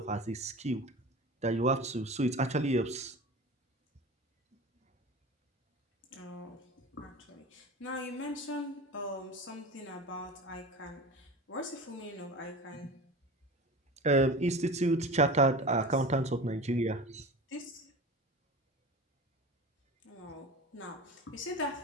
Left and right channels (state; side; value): normal; both; correlation 0.33